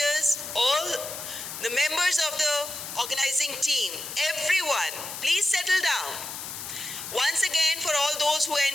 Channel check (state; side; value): noise; left; hiss, 8 dB below the sound